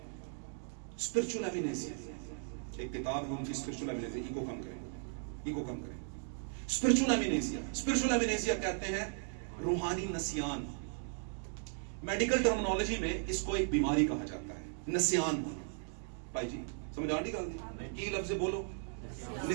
स्पिरिचुअल एमिनेसिया, एक किताब है उनकी, स्पिरिचुअल एमिनेसिया, ईगो कम करें। स्पिरिचुअल एमिनेसिया कहते हैं रूहानी नसियान। मेडिकल टर्मिनोलॉजी में इसको एक बीमारी कहा जाता है, नसियान। भाई जी समझ आ नहीं? की लफ्ज बोलो,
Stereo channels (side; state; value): left; silent; 53 dB below the other